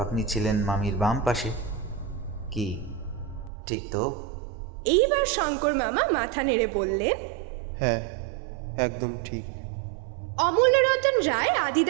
আপনি ছিলেন মামির বাম পাশে। কি ঠিক তো? এইবার শঙ্কর মামা মাথা নেড়ে বললেন, হ্যাঁ, একদম ঠিক। অমূল্যরতন রায়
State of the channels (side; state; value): left; drops out; at 3.5 s